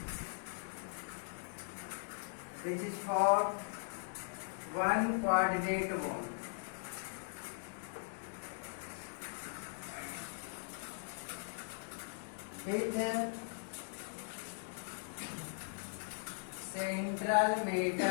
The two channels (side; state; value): right; silent; digital silence